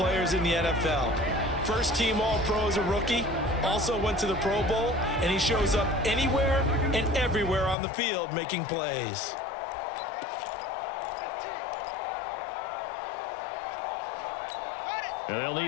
in the NFL. First-team All-Pro as a rookie. Also went to the Pro Bowl, and he shows up anywhere and everywhere on the field making plays. And they'll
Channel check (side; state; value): right; drops out; at 7.8 s